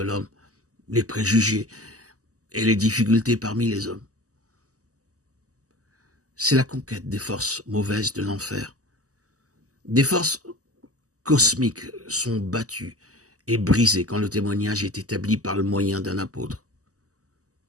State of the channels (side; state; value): left; late; 0.66 ms